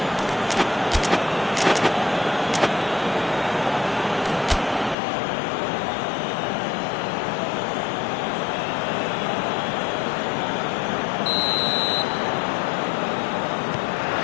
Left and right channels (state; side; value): drops out; right; at 5.0 s